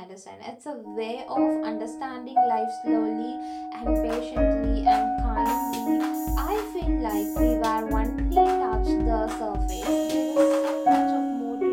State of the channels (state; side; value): identical; both; correlation 1.00